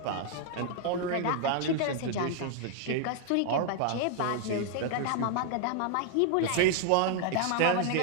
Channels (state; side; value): different; both; correlation 0.00